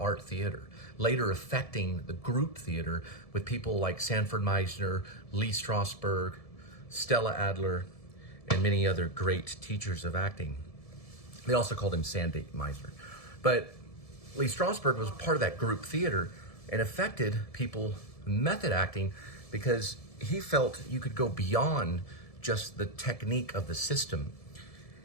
Theater, later affecting the group theater with people like Sanford Meisner, Lee Strasberg, Stella Adler, and many other great teachers of acting. They also called him Sandy Meisner. But Lee Strasberg was part of that group theater and affected people method acting, because he felt you could go beyond just the technique of the system,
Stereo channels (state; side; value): late; right; 1.7 ms